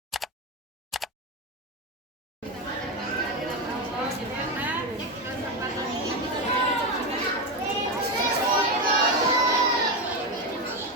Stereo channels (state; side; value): normal; both; correlation 0.13